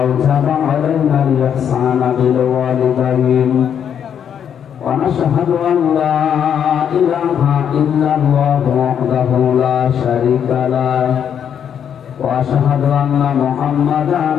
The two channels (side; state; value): right; quieter; 8.5 dB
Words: আওজাবা আলাইনা আল-ইহসানা বিল ওয়ালিদাইন ওয়া নাশহাদু আন লা ইলাহা ইল্লাল্লাহু ওয়াহদাহু লা শারীকা লাহু ওয়া আশহাদু আন্না